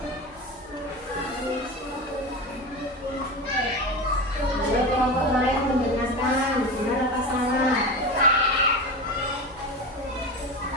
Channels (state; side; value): normal; both; correlation 0.25